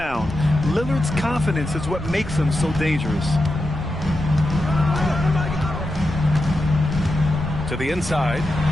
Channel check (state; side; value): noise; left; rumble, 13 dB below the sound